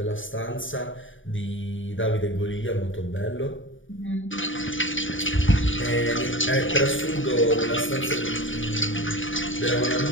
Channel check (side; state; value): right; late; 0.57 ms